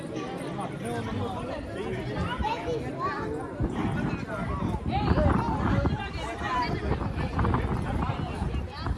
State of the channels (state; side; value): identical; both; correlation 1.00